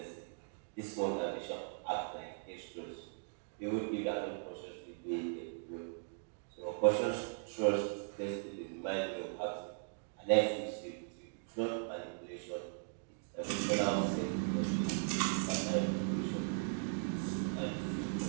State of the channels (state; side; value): silent; left; digital silence